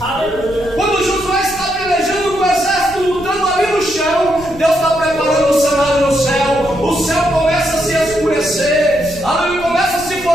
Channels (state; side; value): noise; left; rumble, 17 dB below the sound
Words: Quando Josué está pelejando com o exército lutando ali no chão, Deus está preparando o cenário no céu. O céu começa a se escurecer, a luz começa a se